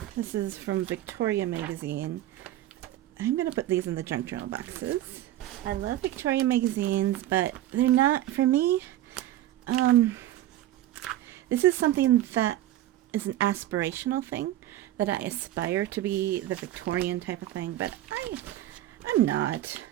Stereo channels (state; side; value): quieter; left; 13.7 dB